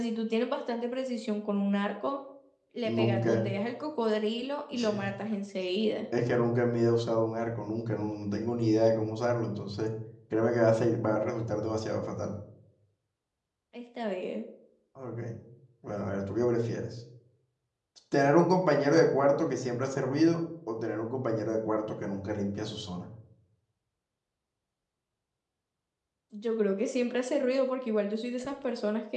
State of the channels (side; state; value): both; identical; correlation 1.00